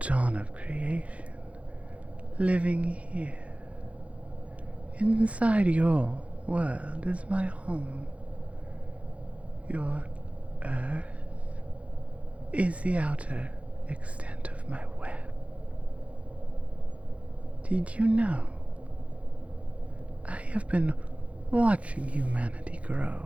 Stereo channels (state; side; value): late; left; 0.064 ms